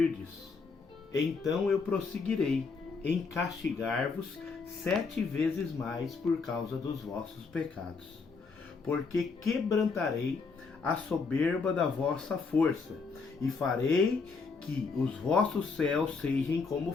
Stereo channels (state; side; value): quieter; right; 4.7 dB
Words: então eu prosseguirei em castigar-vos 7 vezes mais por causa dos vossos pecados. Porque quebrantarei a soberba da vossa força, e farei que os vossos céus sejam como